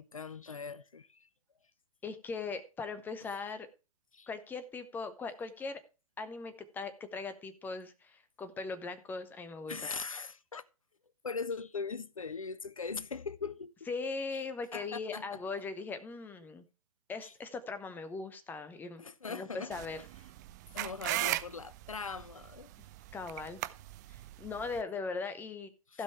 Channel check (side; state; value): both; normal; correlation 0.29